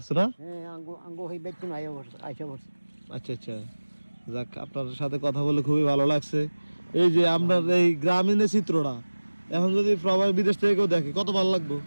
না? হ্যাঁ আঙ্গো আঙ্গো হই বেচুন আইসা বসে। আচ্ছা আচ্ছা, যাক আপনার সাথে কথা বলে খুবই ভালো লাগছে। এই যে আপনার এই গ্রামীণের চিত্রটা এখন যদি প্রবাসী বিদেশ থেকে কেউ দেখে কত ভালো লাগবে।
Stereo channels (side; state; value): both; inverted; correlation -1.00